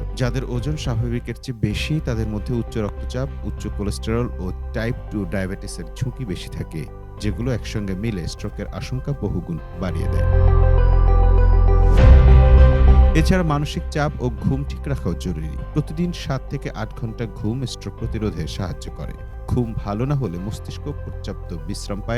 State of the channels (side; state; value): both; identical; correlation 1.00